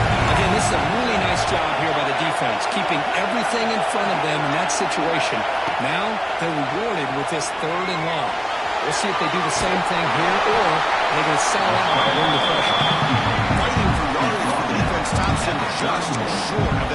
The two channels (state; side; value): identical; both; correlation 1.00